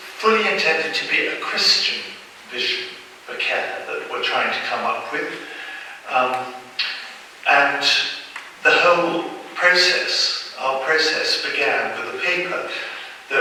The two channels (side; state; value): both; identical; correlation 1.00